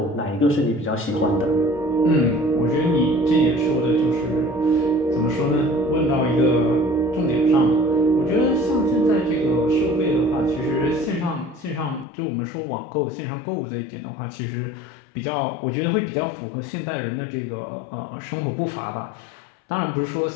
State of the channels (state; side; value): drops out; right; at 12.1 s